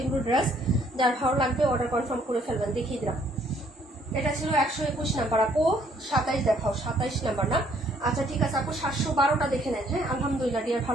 এগুলো ড্রেস। যার ভালো লাগবে অর্ডার কনফার্ম করে ফেলবেন। দেখিয়ে দিলাম, এটা ছিল 121 নাম্বার আপু। 27 দেখাও, 27 নাম্বার না, আচ্ছা ঠিক আছে আপু। 712টা দেখে নেন। হ্যাঁ আলহামদুলিল্লাহ ডিয়ার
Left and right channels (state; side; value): normal; both; correlation 0.64